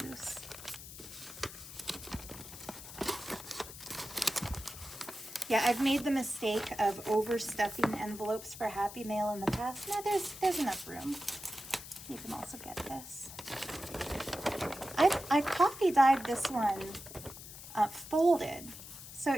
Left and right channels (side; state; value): left; noise; hiss, 13 dB below the sound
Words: loose. Yeah, I've made the mistake of overstuffing envelopes for Happy Mail in the past. No, there's enough room. You can also get this. I coffee dyed this one folded. So